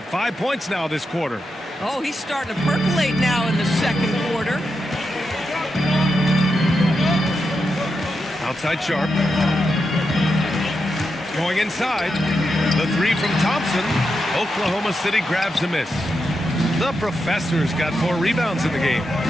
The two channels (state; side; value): normal; both; correlation 0.86